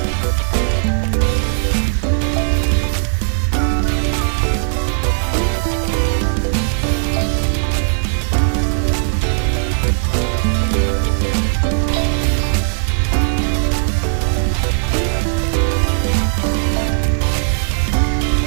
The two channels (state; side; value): silent; left; digital silence